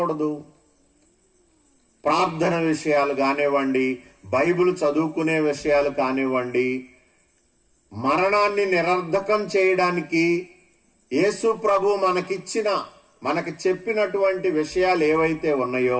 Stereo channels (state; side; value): identical; both; correlation 1.00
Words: ప్రార్థన విషయాలు కానివ్వండి, బైబిల్ చదువుకునే విషయాలు కానివ్వండి, మరణాన్ని నిరర్ధకం చేయడానికి యేసు ప్రభు మనకి చెప్పినటువంటి విషయాలు ఏవైతే